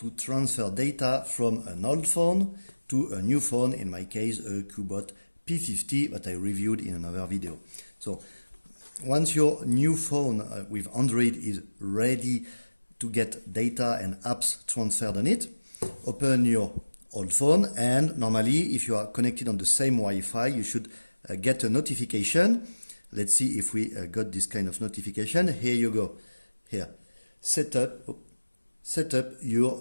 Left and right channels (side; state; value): both; inverted; correlation -1.00